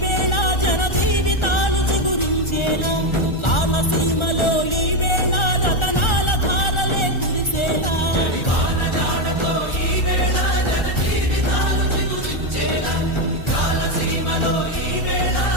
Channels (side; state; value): right; late; 1.4 ms